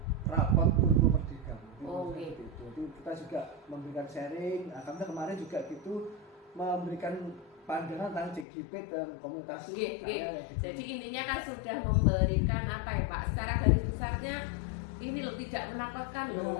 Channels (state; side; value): drops out; right; at 8.5 s